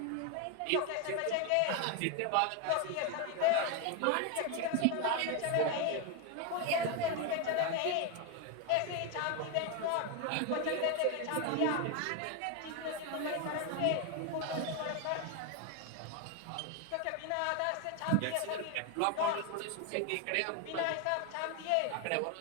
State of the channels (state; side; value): different; both; correlation 0.01